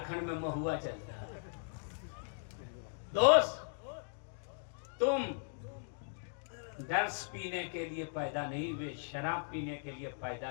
میں مہوا چلتا ہے. دوست تم درس پینے کے لیے پیدا نہیں ہوئے, شراب پینے کے لیے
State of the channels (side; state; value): right; silent; digital silence